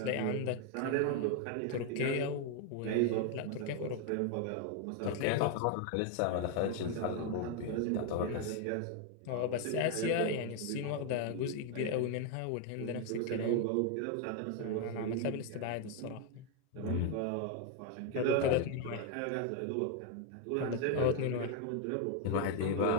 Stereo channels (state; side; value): different; both; correlation 0.01